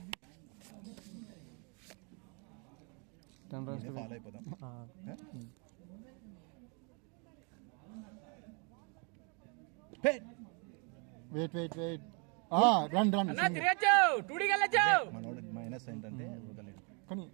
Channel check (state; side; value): quieter; left; 35.2 dB